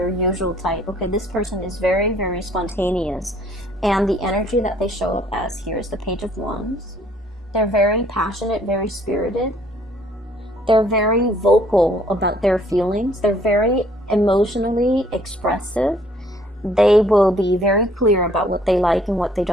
usual type. Okay, this person is very, very spontaneous. And the energy that they show up as here is the Page of Wands. They're very passionate, very spirited. They're very vocal about their feelings. They're very emotionally expressive. They will be very clear about what they like and what they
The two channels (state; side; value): normal; both; correlation 0.61